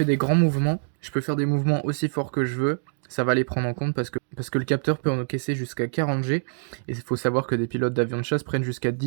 des grands mouvements, je peux faire des mouvements aussi forts que je veux, ça va les prendre en compte parce que le capteur peut encaisser jusqu'à 40 G, et il faut savoir que des pilotes d'avions de chasse prennent jusqu'à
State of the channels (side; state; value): left; silent; digital silence